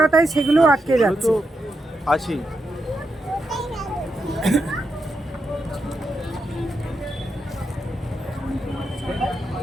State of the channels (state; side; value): normal; both; correlation 0.85